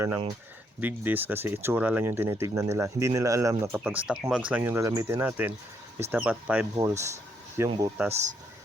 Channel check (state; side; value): normal; both; correlation 0.74